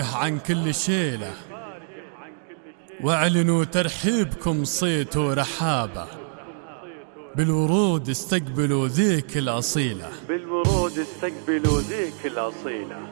عن كل شيله، واعلنوا ترحيبكم صيت ورحابه، بالورود استقبلوا ذيك الأصيلة، بالورود استقبلوا ذيك الأصيلة.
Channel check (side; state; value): left; silent; 58 dB below the other